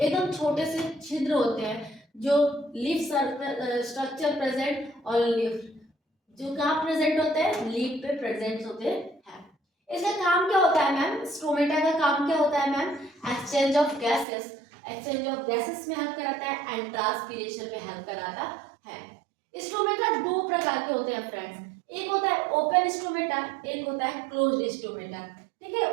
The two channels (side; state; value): left; drops out; at 14.2 s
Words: छोटे से छिद्र होते हैं जो लीफ स्ट्रक्चर प्रेजेंट और लीफ जो कहाँ प्रेजेंट होते हैं, लीफ पे प्रेजेंट होते हैं। इसका काम क्या होता है मैम, स्टोमेटा का काम क्या होता है ma'am, exchange of gases, exchange of gases में हेल्प कराता है एंड ट्रांसपीरेशन में हेल्प कराता है। स्टोमेटा दो प्रकार के होते हैं फ्रेंड्स, एक होता है ओपन स्टोमेटा, एक होता है क्लोज्ड स्टोमेटा। ठीक